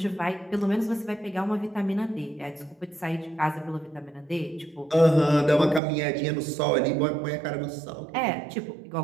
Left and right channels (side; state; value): left; drops out; at 5.8 s